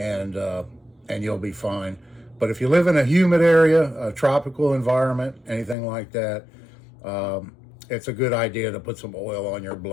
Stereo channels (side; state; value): right; drops out; at 5.8 s